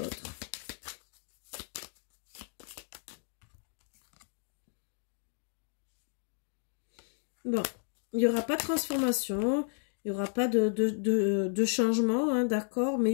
Bon, il n'y aura pas de transformation, il n'y aura pas de changement, hein, d'accord, mais il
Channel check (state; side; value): silent; right; digital silence